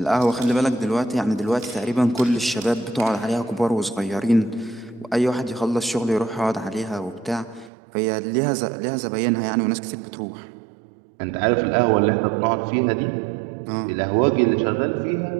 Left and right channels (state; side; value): drops out; left; at 7.7 s